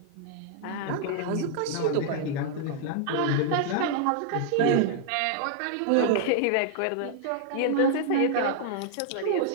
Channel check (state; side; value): different; both; correlation -0.01